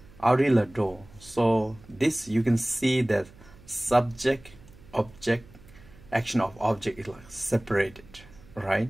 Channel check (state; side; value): noise; right; hum, 23 dB below the sound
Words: Arila Do. So this you can see that subject, object, action of object is like separated, right?